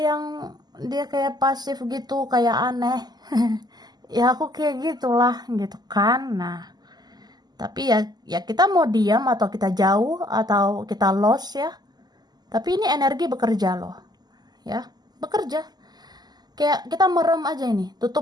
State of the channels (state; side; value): late; left; 0.20 ms